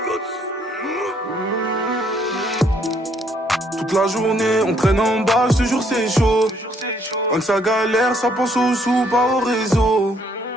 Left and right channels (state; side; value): normal; both; correlation 0.68